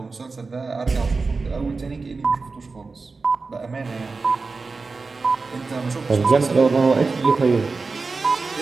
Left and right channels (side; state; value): left; quieter; 4.1 dB